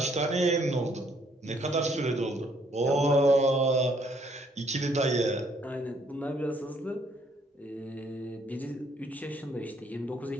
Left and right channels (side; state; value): both; normal; correlation 0.67